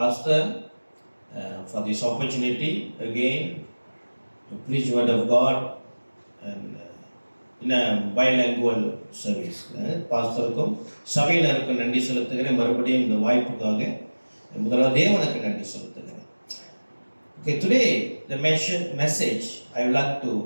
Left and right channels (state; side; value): inverted; both; correlation -1.00